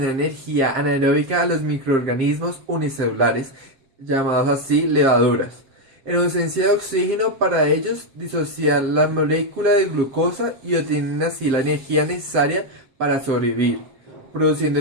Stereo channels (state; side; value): late; left; 7.6 ms